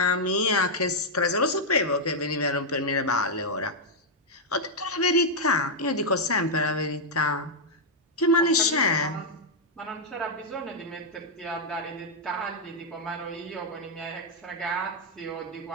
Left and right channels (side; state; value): both; normal; correlation -0.03